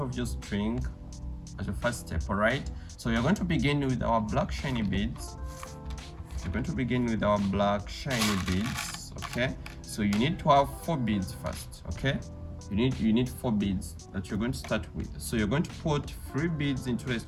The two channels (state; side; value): identical; both; correlation 1.00